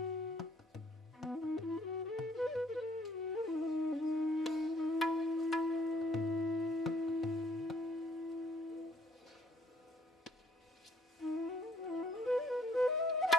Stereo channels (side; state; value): both; normal; correlation 0.63